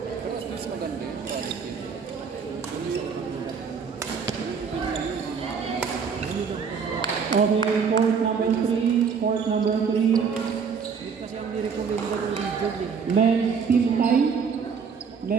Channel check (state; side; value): quieter; left; 6.1 dB